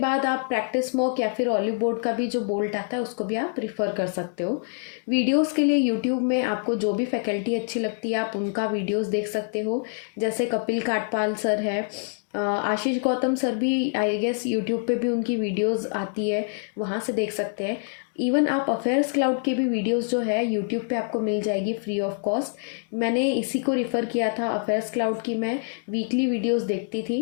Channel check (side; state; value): right; silent; 59 dB below the other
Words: आप प्रैक्टिस मॉक या फिर ऑलिव बोर्ड का भी जो बोल्ट आता है उसको भी आप रिफ़र कर सकते हो। वीडियोस के लिए यूट्यूब में आपको जो भी फैकल्टी अच्छी लगती है आप उनका वीडियोस देख सकते हो। जैसे कपिल काटपाल सर है, आशीष गौतम सर भी आई गेस यूट्यूब पे भी उनकी वीडियोस आती है, वहाँ से देख सकते हैं। इवन आप अफेयर्स क्लाउड के भी वीडियोस जो है यूट्यूब पे आपको मिल जाएगी फ्री ऑफ कॉस्ट। मैंने इसी को रिफ़र किया था, अफेयर्स क्लाउड की मैं वीकली वीडियोस देखती